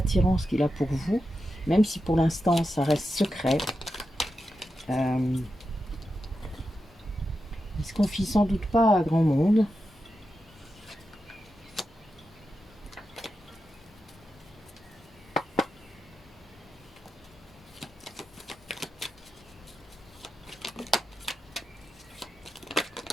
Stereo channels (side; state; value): both; normal; correlation 0.89